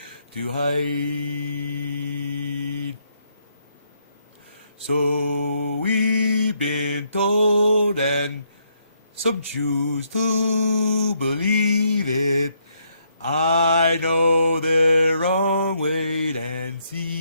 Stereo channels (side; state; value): both; inverted; correlation -0.74